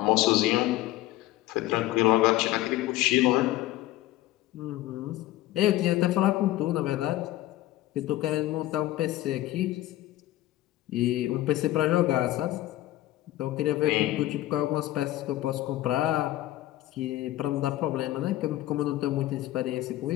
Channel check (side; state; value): right; quieter; 15.6 dB